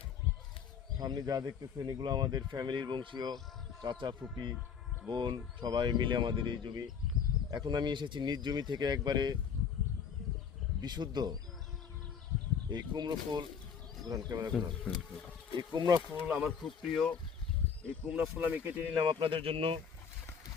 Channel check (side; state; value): right; quieter; 6.9 dB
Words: সামনে যা দেখতেছেন এগুলো আমাদের ফ্যামিলির বংশীয় চাচা ফুপি বোন সবাই মিলে আমাদের এই জমি। এখন আমি এসেছি নিজ জমি থেকে একবারে বিশুদ্ধ এই কুমড়ো ফুল ক্যামেরা ঘোরান। এই কুমড়া ফুল আমার খুব প্রিয়। এই কুমড়া ফুল আমি কেটে নিলাম আপনাদের জন্য।